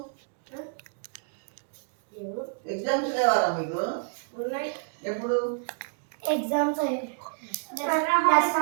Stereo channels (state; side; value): silent; left; digital silence